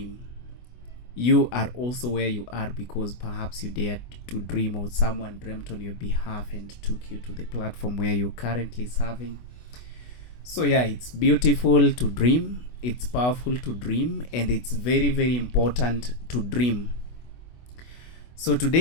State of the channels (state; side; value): late; right; 24 ms